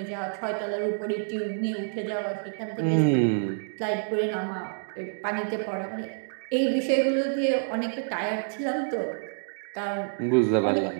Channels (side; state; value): left; silent; digital silence